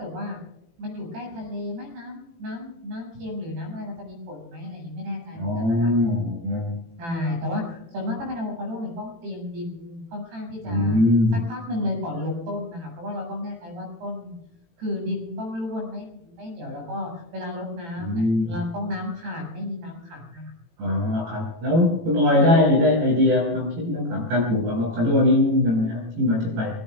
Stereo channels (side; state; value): left; late; 18 ms